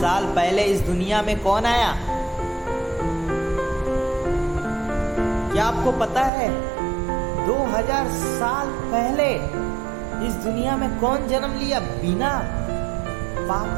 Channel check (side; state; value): left; drops out; at 6.3 s